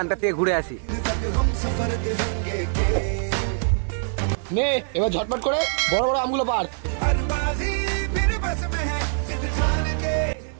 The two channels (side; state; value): left; silent; digital silence